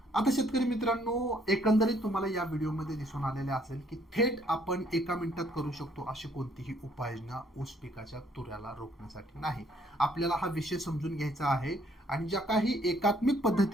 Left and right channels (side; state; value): both; normal; correlation 0.65